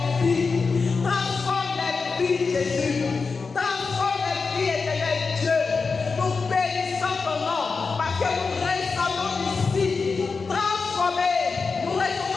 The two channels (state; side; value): quieter; right; 4.6 dB